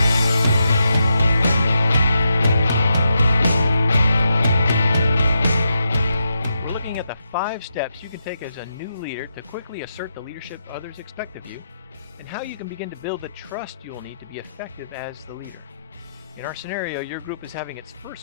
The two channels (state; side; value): inverted; both; correlation -0.84